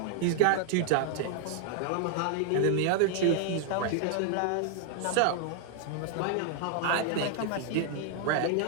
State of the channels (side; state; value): both; different; correlation -0.01